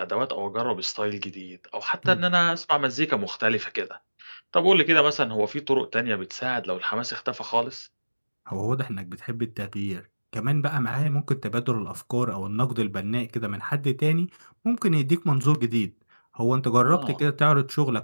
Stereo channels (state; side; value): inverted; both; correlation -1.00